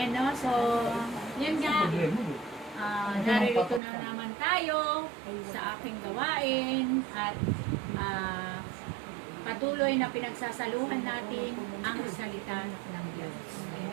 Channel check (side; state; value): left; drops out; at 3.8 s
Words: no? So, yun nga. Naririto na naman tayo sa aking gawain at patuloy na pinagsasaluhan natin ang salita ng Diyos.